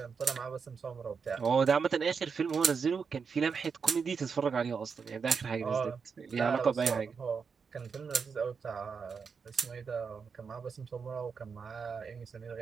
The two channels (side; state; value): left; quieter; 5.8 dB